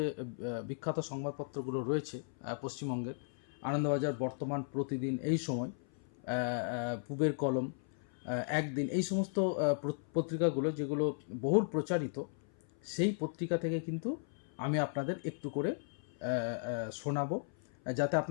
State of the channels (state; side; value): silent; right; 54 dB below the other